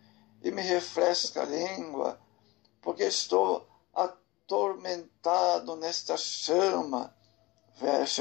e me refresca a língua, porque estou atormentado nesta chama.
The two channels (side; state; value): right; quieter; 21.5 dB